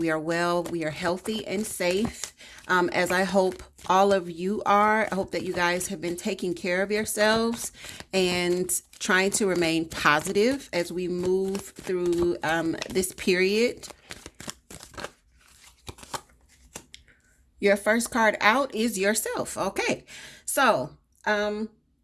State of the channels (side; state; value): both; identical; correlation 1.00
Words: are well. We are healthy and safe, as I hope all of you are. I hope that you guys have been taking care of yourselves and trying to remain positive as we move through this period. Your first card out is yourself. Okay, so